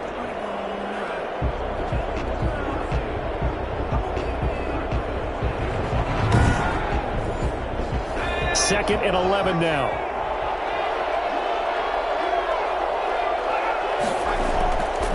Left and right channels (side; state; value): both; identical; correlation 1.00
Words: Second and 11 now.